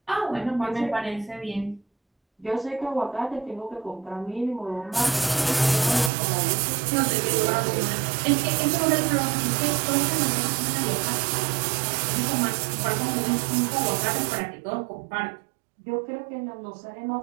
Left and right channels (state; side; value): drops out; left; at 6.1 s